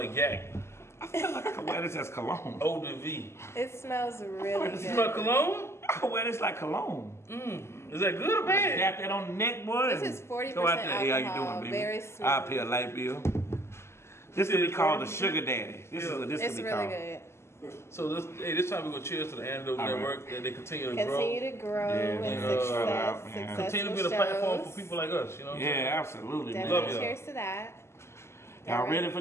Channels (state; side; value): late; right; 0.13 ms